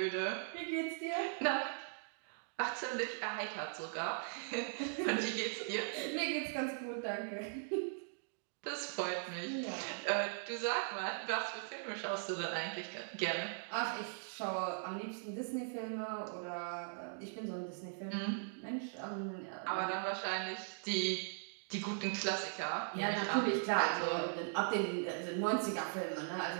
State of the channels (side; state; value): left; silent; digital silence